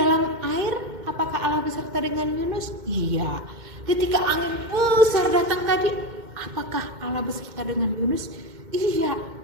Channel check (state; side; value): late; left; 2.1 ms